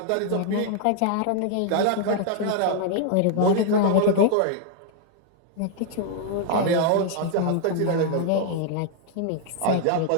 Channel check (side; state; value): both; different; correlation 0.00